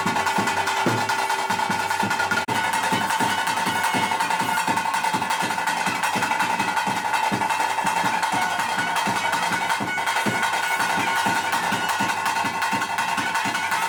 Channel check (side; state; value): both; identical; correlation 1.00